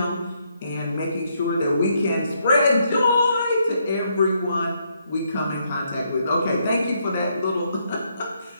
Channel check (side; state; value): both; inverted; correlation -0.75